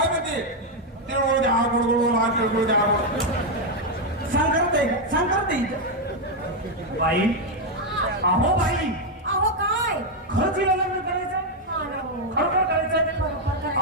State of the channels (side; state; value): both; normal; correlation 0.02